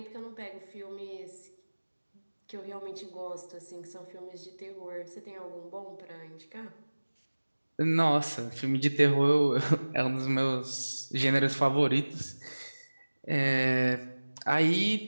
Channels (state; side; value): inverted; both; correlation -1.00